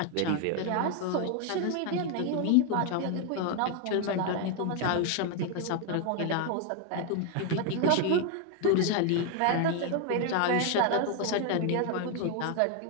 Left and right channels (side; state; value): both; different; correlation 0.01